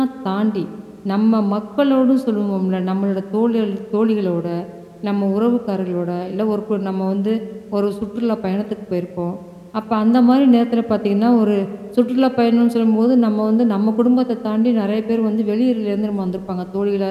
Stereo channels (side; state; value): both; identical; correlation 1.00